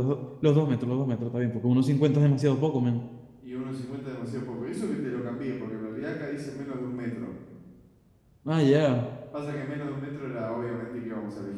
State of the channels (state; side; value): identical; both; correlation 1.00